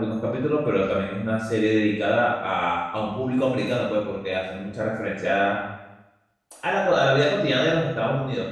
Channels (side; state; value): both; identical; correlation 1.00